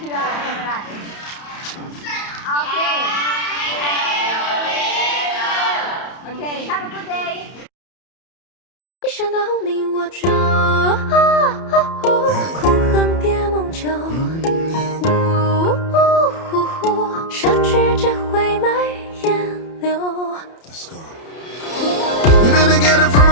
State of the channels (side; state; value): right; late; 31 ms